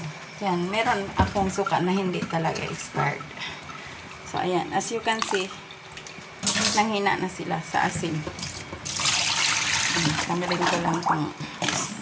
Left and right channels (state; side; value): identical; both; correlation 1.00